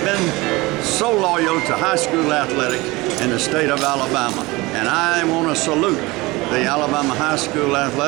been so loyal to high school athletics in the state of Alabama. And I want to salute the Alabama High School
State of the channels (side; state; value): left; quieter; 22.1 dB